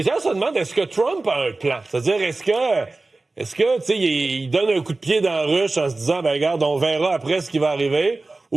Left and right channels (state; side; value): quieter; left; 3.3 dB